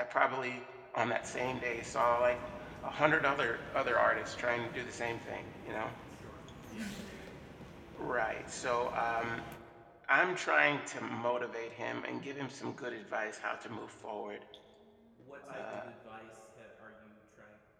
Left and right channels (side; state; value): both; identical; correlation 1.00